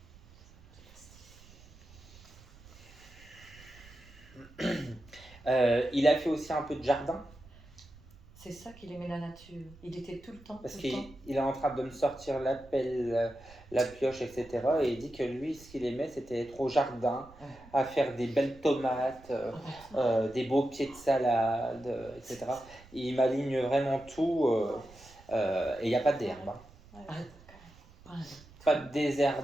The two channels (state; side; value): noise; right; rumble, 23 dB below the sound